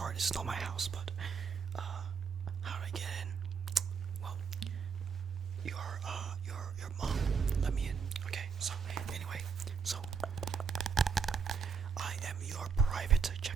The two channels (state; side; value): quieter; left; 6.0 dB